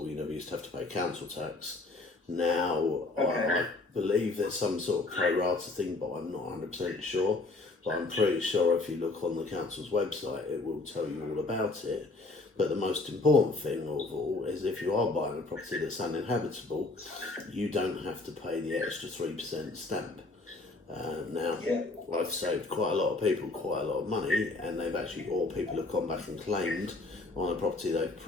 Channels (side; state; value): right; quieter; 3.3 dB